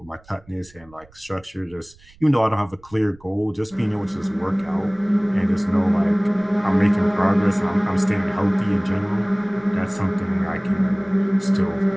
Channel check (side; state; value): right; noise; rumble, 27 dB below the sound